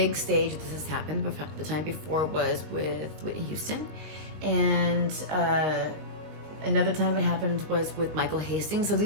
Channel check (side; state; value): left; late; 20 ms